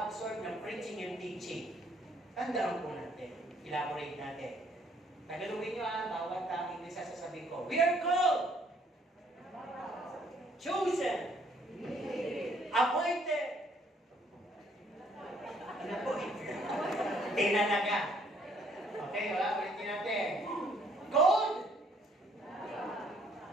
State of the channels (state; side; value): normal; both; correlation 0.65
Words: ng preaching and teaching. Tandaan po natin. Elaborate natin. Tagalogin nyo bawat English sa sasabihin ko. We are called, chosen, appointed, ano po? Tinanaga. Okay, ulitin natin. Called,